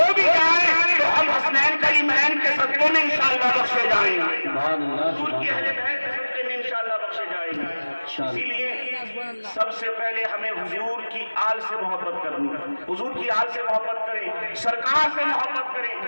بھی جائیں تو ہم حسنین کریمین کے صدقے میں انشاءاللہ بخشے جائیں گے، حضور کی اہل بیت کے صدقے میں انشاءاللہ بخشے جائیں گے۔ اسی لیے سب سے پہلے ہمیں حضور کی آل سے محبت کرنی، حضور کی آل سے محبت کریں، سرکار سے محبت کریں،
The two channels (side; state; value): both; inverted; correlation -1.00